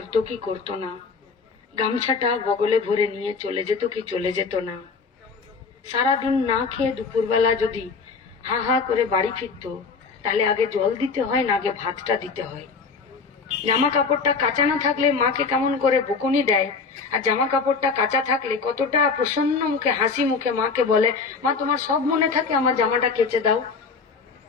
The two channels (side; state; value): right; quieter; 4.9 dB